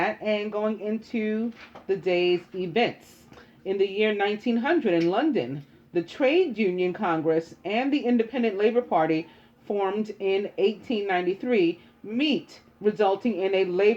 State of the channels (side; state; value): both; identical; correlation 1.00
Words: and going into the day's events. In the year 1900 in London, the Trade Union Congress and the Independent Labour Party, formed in 1893, meet, resulting in a